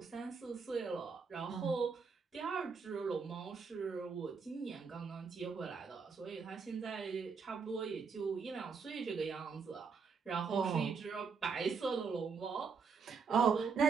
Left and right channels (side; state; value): left; quieter; 5.4 dB